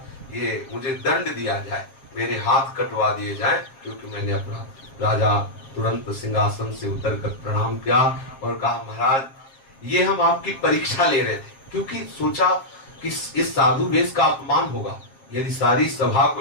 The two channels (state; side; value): late; right; 7.5 ms